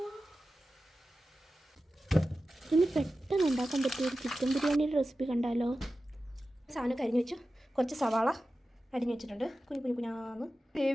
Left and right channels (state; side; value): normal; both; correlation 0.94